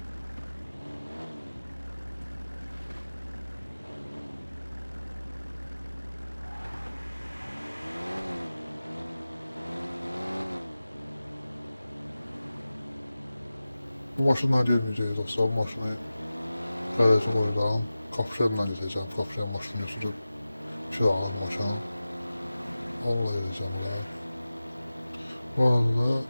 Bu maşından gelmeyeceğiz dostlar. Bu maşını garajı koyacağım. Kapışanla gideceğim. Kapışan maşını götürüp kiralık maşını. Onunla gideceğim ya. Bu arada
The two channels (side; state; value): both; inverted; correlation -0.96